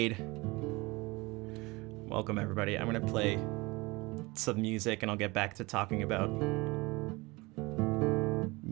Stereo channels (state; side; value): quieter; left; 23.5 dB